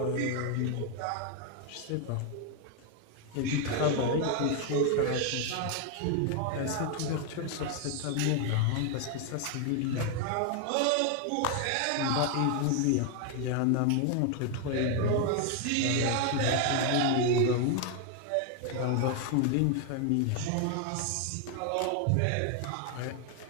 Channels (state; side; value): different; both; correlation 0.01